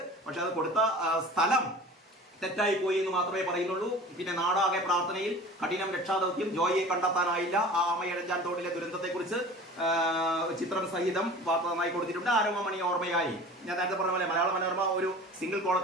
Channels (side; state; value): both; normal; correlation 0.41